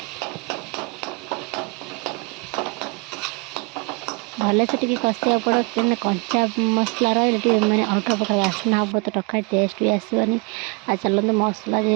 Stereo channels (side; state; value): left; quieter; 30.6 dB